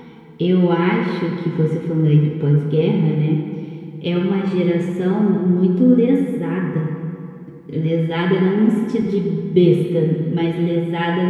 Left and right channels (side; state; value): both; identical; correlation 1.00